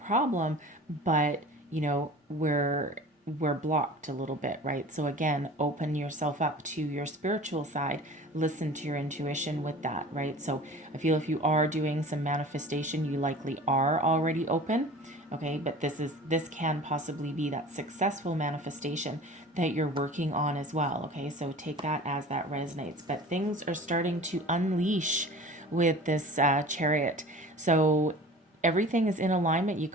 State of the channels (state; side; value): normal; both; correlation 0.41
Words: problem, but, we're blocked a little bit, right? So again, open yourself up to your spiritual side, listen to your intuition with that, right? So I feel if you are doing some manifestation, you likely are already open, okay? But this can possibly be that successful manifestation that you're working on as well, okay? So take that as that resonates. But things are starting to unleash with this Chariot. So everything is in alignment. You